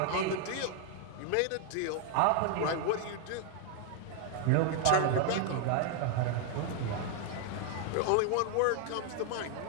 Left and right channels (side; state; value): both; different; correlation 0.00